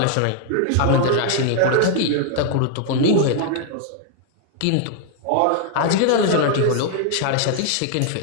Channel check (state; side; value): different; both; correlation 0.00